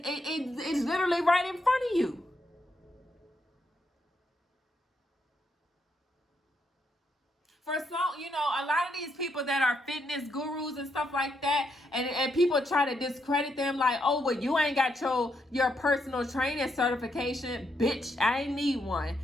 literally right in front of you. For some, a lot of these people that are fitness gurus and stuff like that, and people try to discredit them like, oh, well, you ain't got your personal training certification. Bitch, I ain't need one.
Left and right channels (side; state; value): both; normal; correlation 0.79